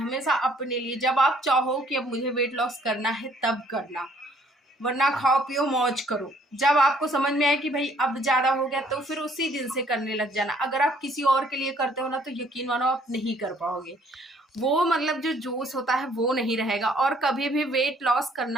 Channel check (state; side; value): normal; both; correlation 0.62